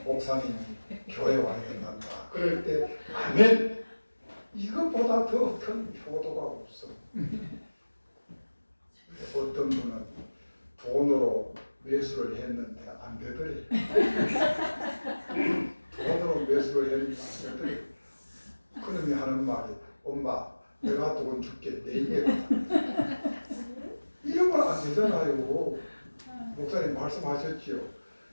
목사님이 교회 와야 된단다. 그럴 때 아멘. 이것보다 더 큰 효도가 없어. 어떤 분은 돈으로 매수를 했는데 안 되더래. 돈으로 매수를 했는데 안 되더래. 그놈이 하는 말이 엄마 내가 돈 줄게 내일에 이런 건 안 되잖아요. 목사님 말씀하셨지요.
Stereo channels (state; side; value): inverted; both; correlation -1.00